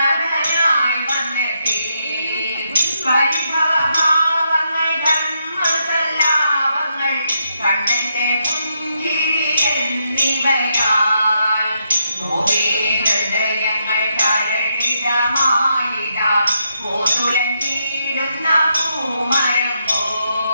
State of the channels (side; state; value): both; inverted; correlation -0.80